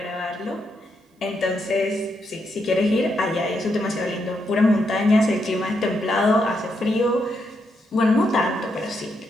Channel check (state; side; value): normal; both; correlation 0.80